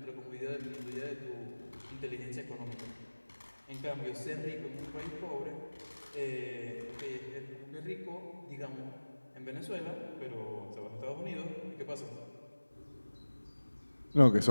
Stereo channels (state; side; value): inverted; both; correlation -1.00